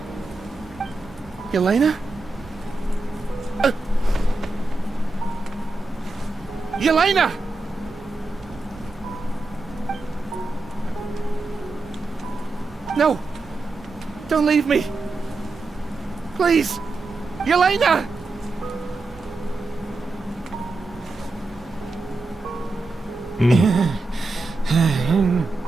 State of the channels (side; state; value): left; quieter; 3.3 dB